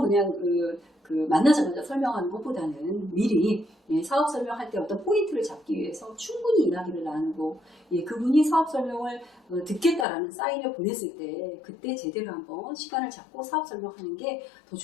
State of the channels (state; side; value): drops out; right; at 10.1 s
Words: 그냥 만나자마자 설명하는 것보다는 미리 사업 설명할 때 어떤 포인트를 잡기 위해서 충분히 이야기를 나누고 그분이 사업 설명을 듣겠다라는 사인을 보냈을 때 그때 제대로 한번 시간을 잡고 사업 설명하는 게 더